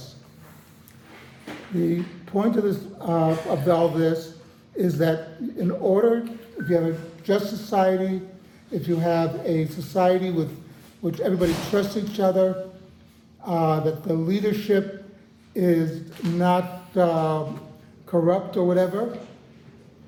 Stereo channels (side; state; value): both; identical; correlation 1.00